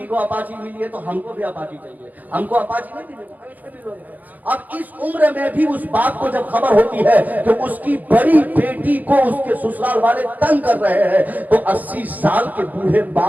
کو اپاچی ملی ہے تو ہم کو بھی اپاچی چاہیے، ہم کو اپاچی نہیں ملے۔ اب اس عمر میں بھی اس بات کو جب خبر ہوتی ہے کہ اس کی بڑی بیٹی کو اس کے سسرال والے تنگ کر رہے ہیں تو 80 سال کے بوڑھے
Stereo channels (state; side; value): late; left; 0.081 ms